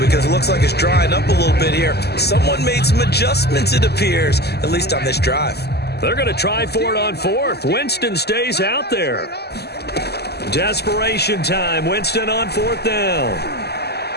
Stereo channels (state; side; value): late; right; 0.47 ms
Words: Because it looks like it's drying up a little bit here. Someone made some adjustments, it appears, at least on this drive. They're going to try for it on 4th. Winston stays out there. Desperation time. Winston on 4th down.